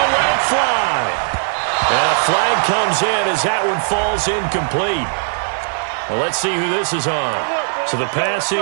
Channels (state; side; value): silent; left; 66 dB below the other